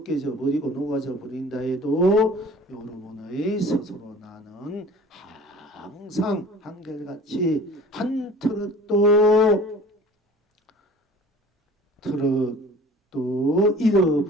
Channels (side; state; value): both; normal; correlation 0.46